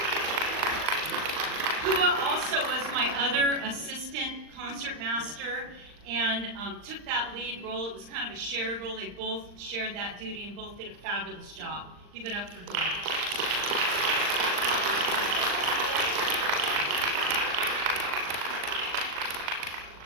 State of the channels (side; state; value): left; late; 39 ms